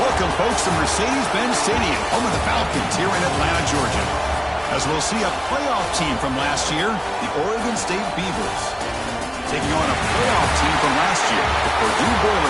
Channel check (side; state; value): both; identical; correlation 1.00